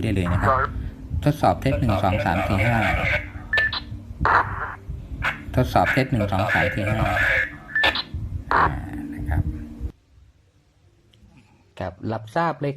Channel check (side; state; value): both; identical; correlation 1.00